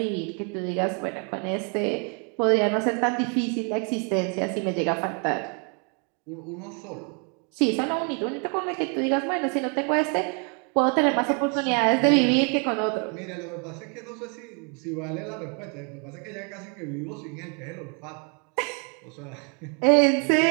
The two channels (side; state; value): left; quieter; 38.0 dB